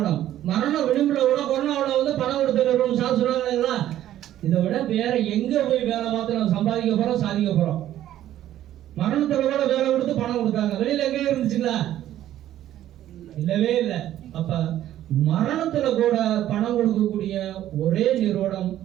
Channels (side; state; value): left; quieter; 12.5 dB